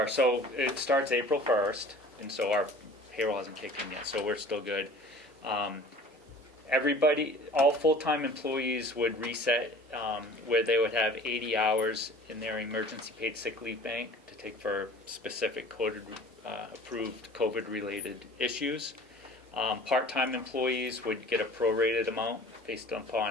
so it starts April 1st, and so our payroll hasn't kicked in yet, so we're still good. Everybody, all full-time employees would reset where they would have 80 hours in their emergency paid sick leave bank to take for specific approved COVID-related issues. Part-time employees would get a prorated amount based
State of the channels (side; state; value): both; normal; correlation 0.46